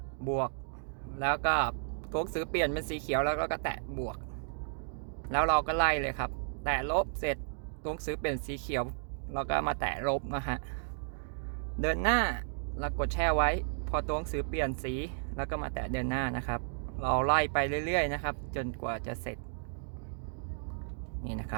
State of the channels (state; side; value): silent; left; digital silence